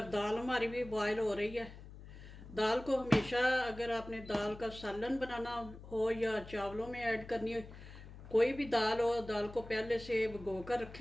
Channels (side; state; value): left; noise; hum, 15 dB below the sound